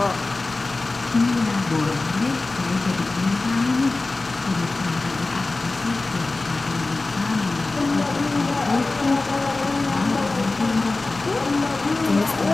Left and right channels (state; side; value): quieter; right; 3.3 dB